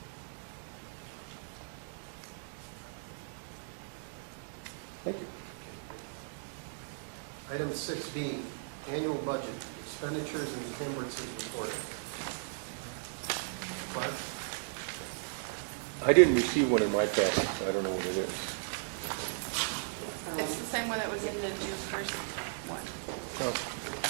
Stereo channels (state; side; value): silent; left; 54 dB below the other